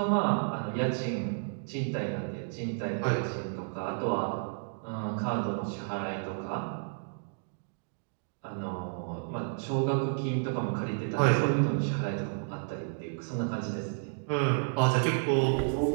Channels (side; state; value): left; silent; digital silence